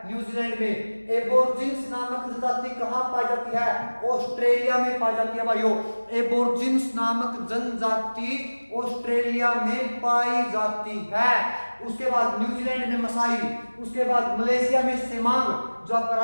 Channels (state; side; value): inverted; both; correlation -1.00